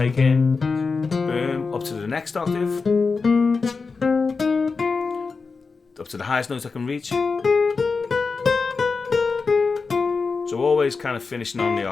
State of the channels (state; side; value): quieter; right; 4.6 dB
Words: in. Boom, up to the next octave. Up to the highest notes I can reach. So always kind of finishing on the